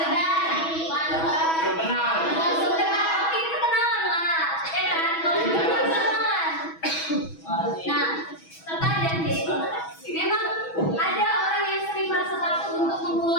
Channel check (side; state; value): right; late; 6.2 ms